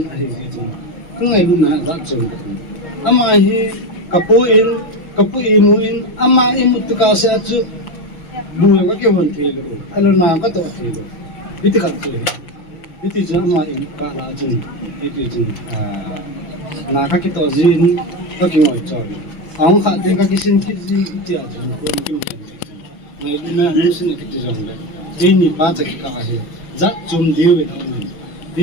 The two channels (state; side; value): late; right; 6.1 ms